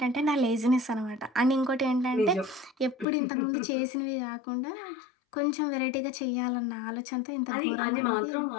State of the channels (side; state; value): right; drops out; at 3.1 s